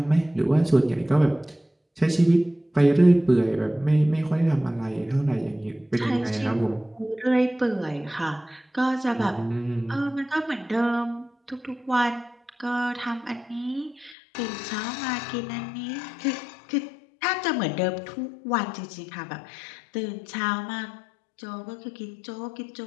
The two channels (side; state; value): right; drops out; at 14.2 s